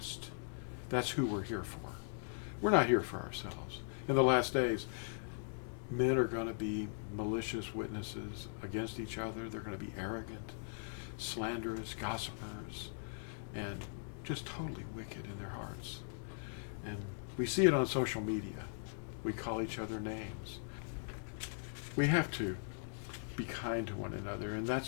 That's who we're here for. We're not here for ourselves. In the last days, men are going to be malicious witnesses against each other. They're going to be arrogant, slanderous, gossipers, and just totally wicked in their hearts. And we see it on social media. We call each other names. We have to be kind to one another, and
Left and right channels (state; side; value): silent; right; digital silence